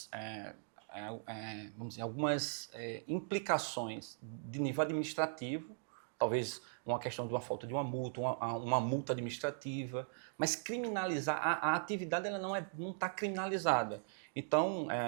vamos dizer, algumas implicações de nível administrativo, talvez uma questão de uma falta de uma multa uma multa, mas criminalizar, a atividade ela não está criminalizada. Então,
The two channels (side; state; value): left; silent; digital silence